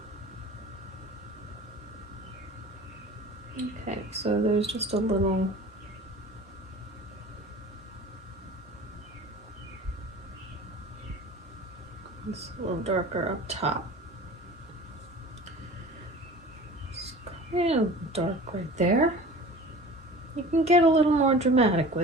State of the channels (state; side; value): normal; both; correlation 0.40